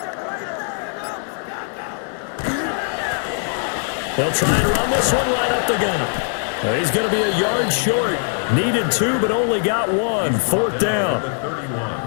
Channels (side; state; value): right; silent; 57 dB below the other